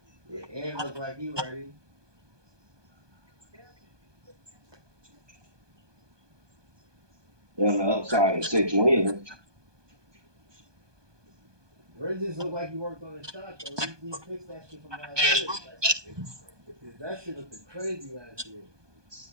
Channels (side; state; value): left; late; 1.2 ms